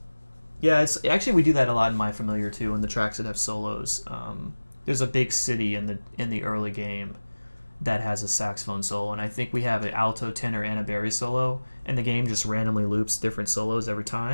Yeah, it's actually we do that a lot in My Familiar too, in the tracks that have solos. There's a big city in the early game that has a saxophone solo, and I think we have an alto, tenor, and a bass solo, and the game just randomly loops different solos every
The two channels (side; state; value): both; inverted; correlation -1.00